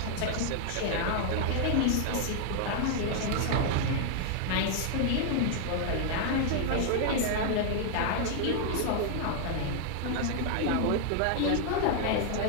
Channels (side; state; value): both; different; correlation 0.00